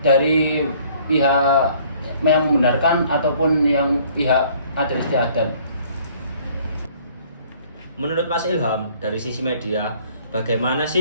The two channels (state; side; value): inverted; both; correlation -0.58